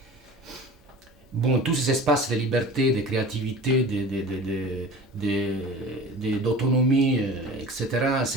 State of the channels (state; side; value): normal; both; correlation 0.39